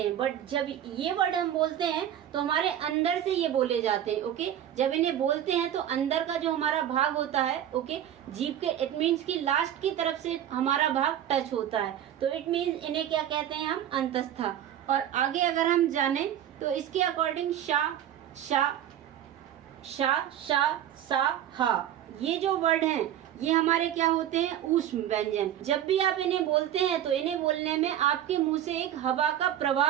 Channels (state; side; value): quieter; left; 10.9 dB